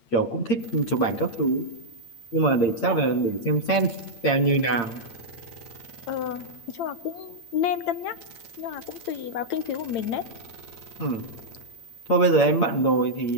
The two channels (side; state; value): right; late; 8.8 ms